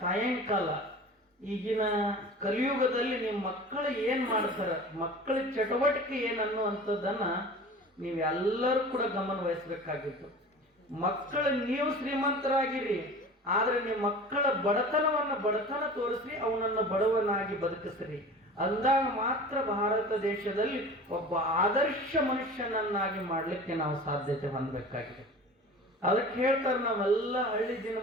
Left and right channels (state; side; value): normal; both; correlation 0.38